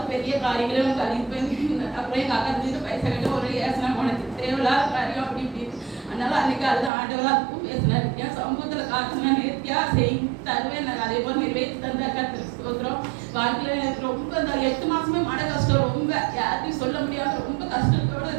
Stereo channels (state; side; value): drops out; left; at 6.9 s